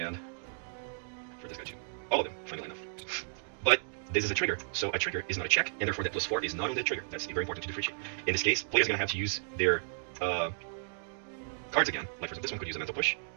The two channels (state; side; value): silent; left; digital silence